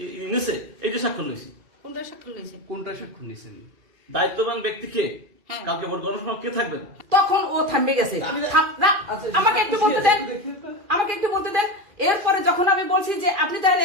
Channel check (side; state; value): left; late; 2.4 ms